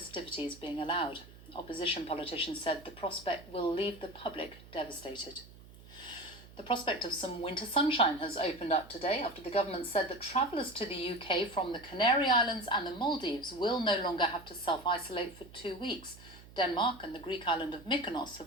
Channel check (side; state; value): right; noise; hum, 20 dB below the sound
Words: being allowed. Opposition politicians said the prospect will leave the public devastated. The prospect of some winter sunshine has opened up today after the government said that travellers to the UK from the Canary Islands and the Maldives will no longer have to self-isolate for 2 weeks. Denmark and the Greek island of Mykonos